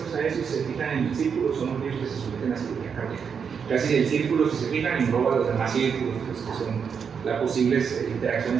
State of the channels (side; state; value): left; quieter; 6.6 dB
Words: a eso y se fijan en el círculo son aquellos que se someten a cirugía cardíaca. Casi el círculo, si se fijan, engloba los demás círculos, pues, que son las posibles